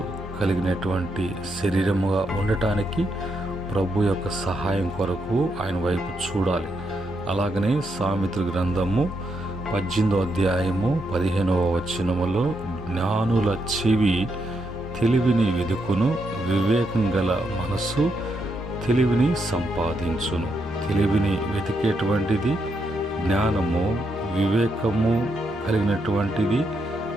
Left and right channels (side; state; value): both; normal; correlation 0.80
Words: కలిగినటువంటి శరీరముగా ఉండటానికి ప్రభు యొక్క సహాయం కొరకు ఆయన వైపు చూడాలి. అలాగనే సామెతల గ్రంథము 18:15 జ్ఞానుల చెవి తెలివిని వెదుకును, వివేకం గల మనస్సు తెలివిని సంపాదించును. తెలివిని వెతికేటువంటిది జ్ఞానము, వివేకము కలిగినటువంటిది